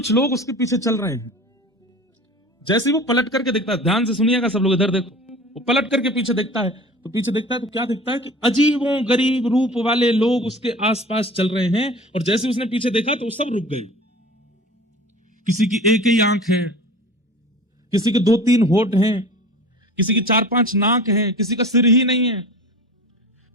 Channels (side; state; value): both; normal; correlation 0.39